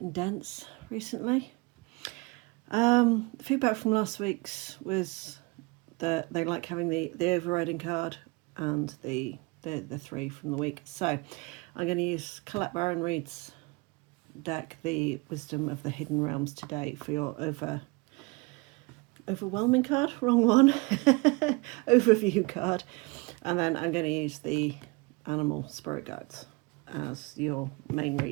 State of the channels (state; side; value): quieter; left; 26.8 dB